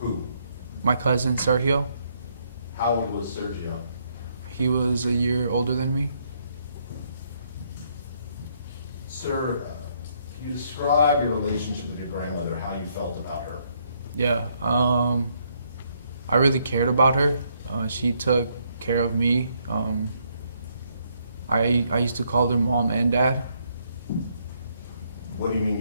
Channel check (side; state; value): both; inverted; correlation -0.72